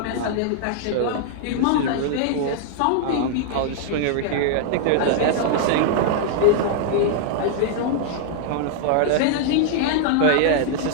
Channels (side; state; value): both; different; correlation -0.01